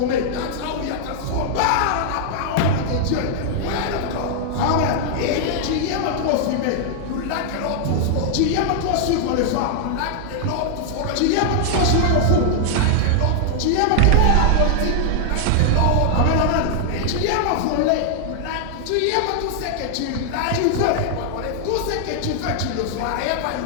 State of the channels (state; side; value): different; both; correlation -0.01